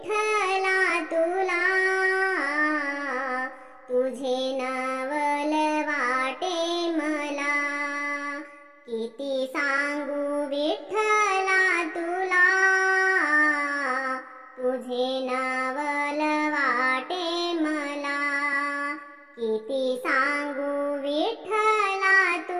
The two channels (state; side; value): identical; both; correlation 1.00